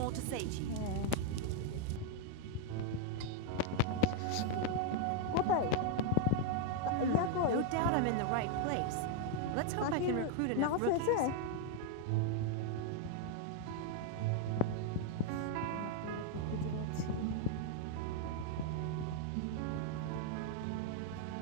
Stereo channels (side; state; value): both; different; correlation 0.00